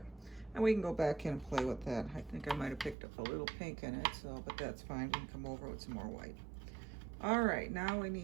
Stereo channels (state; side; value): drops out; left; at 3.0 s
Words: And we can go back in and play with that. I think I might have picked up a little pink in it, so, but that's fine. We can come over with some more white. All right, now we